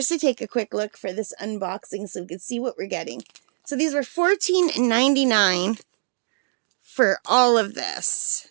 to take a quick look for this unboxing so we can see what we're getting. So these were $14.99 for all of this.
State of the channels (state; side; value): silent; left; digital silence